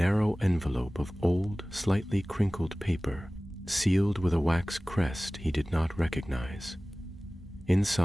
envelope of old, slightly crinkled paper, sealed with a wax crest he did not recognize.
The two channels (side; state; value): both; normal; correlation 0.98